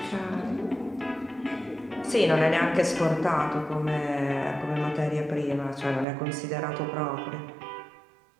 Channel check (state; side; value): drops out; left; at 6.1 s